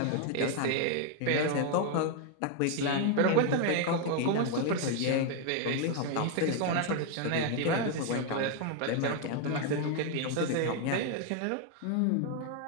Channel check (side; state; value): both; different; correlation 0.01